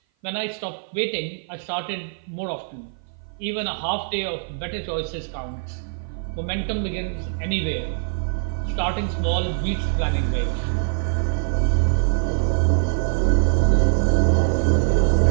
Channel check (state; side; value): silent; left; 57 dB below the other